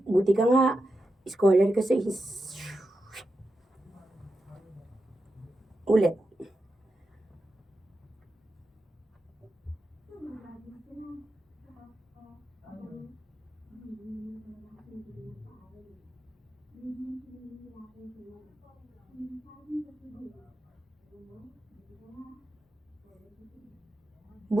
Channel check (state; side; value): normal; both; correlation 0.89